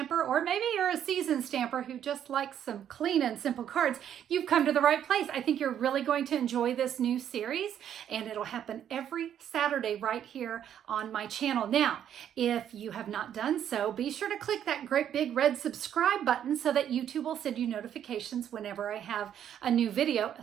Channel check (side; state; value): left; quieter; 9.8 dB